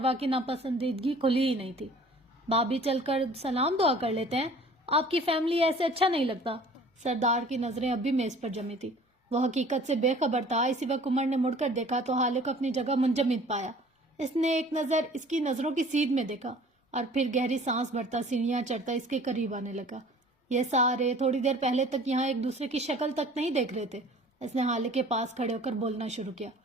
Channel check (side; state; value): both; normal; correlation 0.49